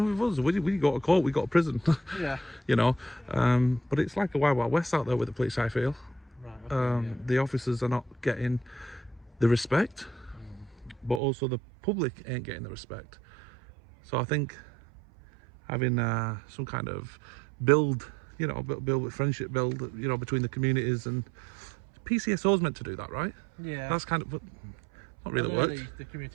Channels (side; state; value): left; drops out; at 11.2 s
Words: with us. We go to court, we go to prison. Yeah. But it's like a wild, wild west out there with the police, I feel. Right. Okay, The officers are not getting the respect, but also the public ain't getting the respect. So I think having some kind of build with friendship, between the communities, and PCSO's meant to do that, right? Yeah. That's kind of, Not really worked. The